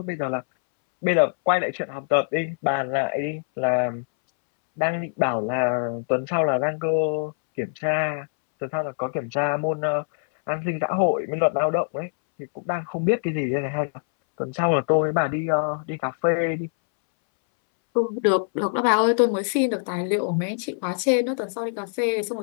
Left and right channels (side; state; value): right; silent; 63 dB below the other